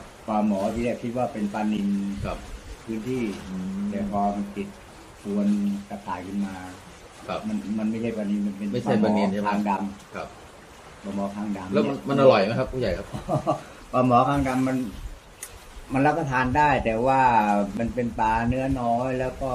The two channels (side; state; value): both; identical; correlation 1.00